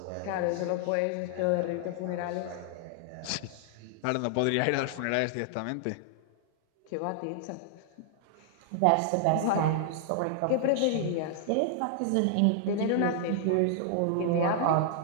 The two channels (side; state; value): both; different; correlation -0.01